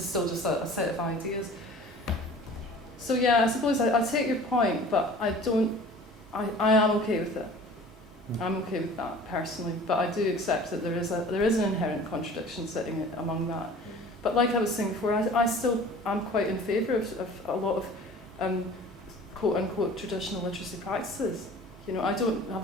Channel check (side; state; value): both; normal; correlation 0.45